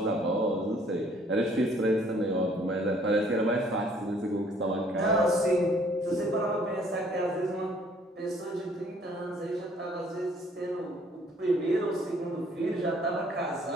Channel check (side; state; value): both; normal; correlation 0.60